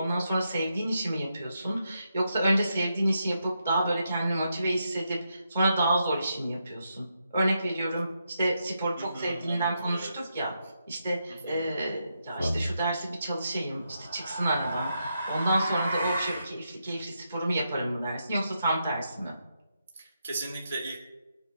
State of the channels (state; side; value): inverted; both; correlation -0.83